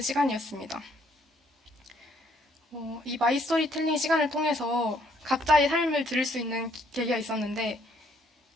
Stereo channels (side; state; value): both; normal; correlation 0.67